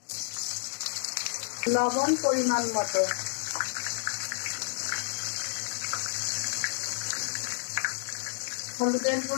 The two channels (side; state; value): right; silent; digital silence